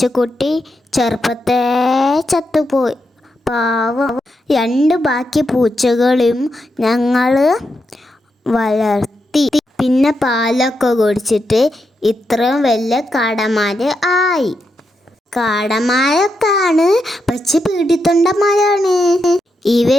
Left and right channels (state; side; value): normal; both; correlation 0.84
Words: ചെറുപ്പത്തെ ചത്തുപോയി. പാവം. 2 ബാക്കി പൂച്ചകളും ഞങ്ങൾ വളർത്തി. പിന്നെ പാലൊക്കെ കുടിച്ചിട്ട് ഇത്രയും വലിയ കാടന്മാര് ആയി. കാടന്മാരൊക്കെയാണ്, പക്ഷെ പീഡിത്തൊണ്ടന്മാരാണ്.